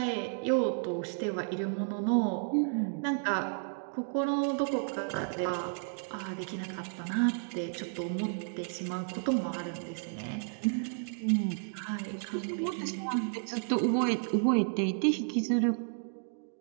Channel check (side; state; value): left; silent; digital silence